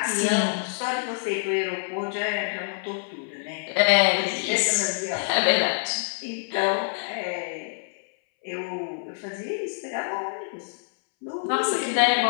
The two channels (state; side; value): silent; right; 61 dB below the other